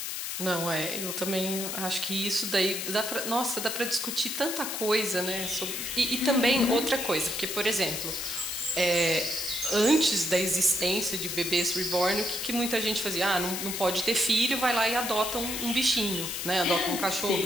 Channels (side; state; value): left; noise; hiss, 4 dB below the sound